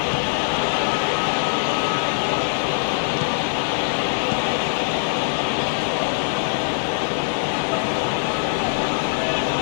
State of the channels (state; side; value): silent; right; digital silence